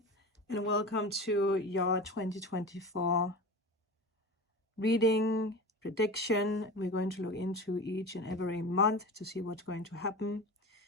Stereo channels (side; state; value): both; normal; correlation 0.31